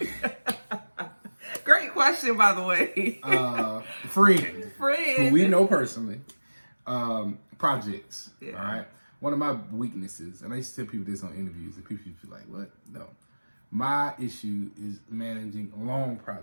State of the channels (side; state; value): both; inverted; correlation -1.00